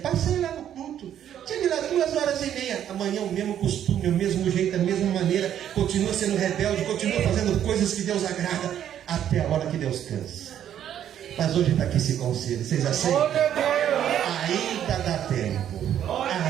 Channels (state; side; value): quieter; left; 10.3 dB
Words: lá no culto. Cheguei lá 2h30. Amanhã o mesmo costume, o mesmo jeito, a mesma maneira. Continua sendo rebelde, continua fazendo coisas que Deus agrada. Até a hora que Deus cansa. Mas hoje está aqui esse conselho. Vocês aceitam? Ainda dá tempo.